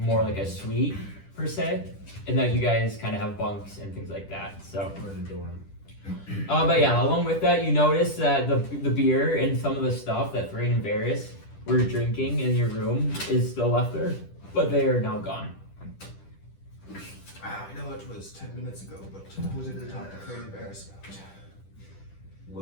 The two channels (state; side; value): late; right; 10 ms